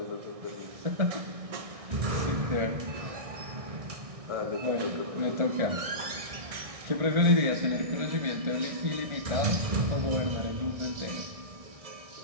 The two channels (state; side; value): late; left; 1.6 ms